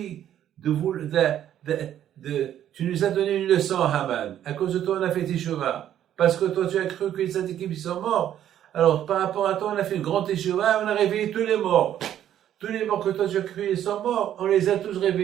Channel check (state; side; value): quieter; left; 10.9 dB